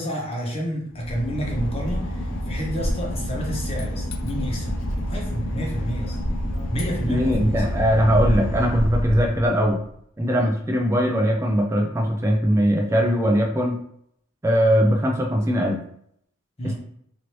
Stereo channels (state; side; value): normal; both; correlation 0.81